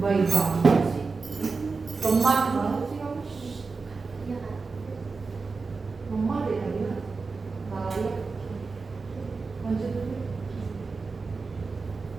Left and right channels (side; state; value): left; quieter; 4.3 dB